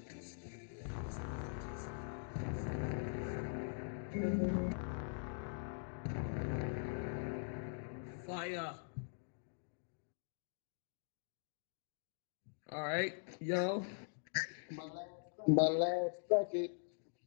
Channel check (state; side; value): silent; right; digital silence